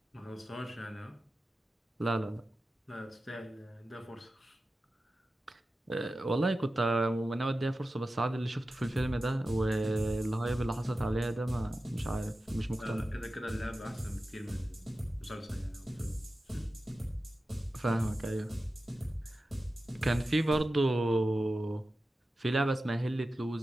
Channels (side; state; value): both; normal; correlation 0.94